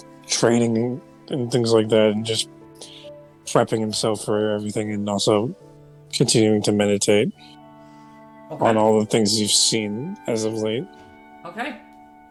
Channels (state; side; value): identical; both; correlation 1.00